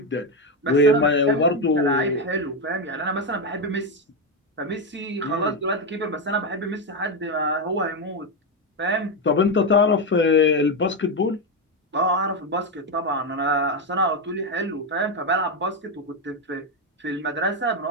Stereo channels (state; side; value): normal; both; correlation 0.09